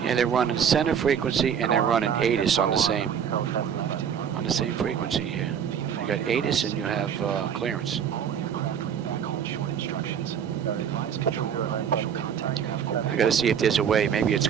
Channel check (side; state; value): left; quieter; 8.0 dB